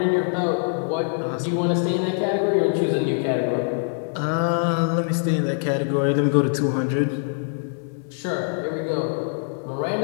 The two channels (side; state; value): right; silent; digital silence